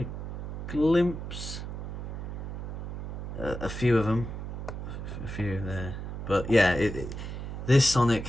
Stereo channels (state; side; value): noise; right; hum, 6 dB below the sound